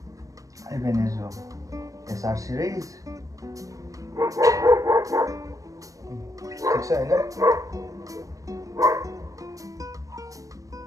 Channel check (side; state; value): left; late; 0.16 ms